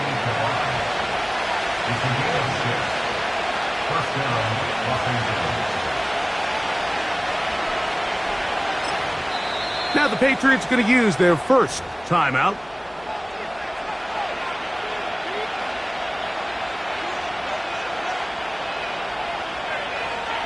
Now the Patriots going to use their first timeout.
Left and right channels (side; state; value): left; noise; hum, 28 dB below the sound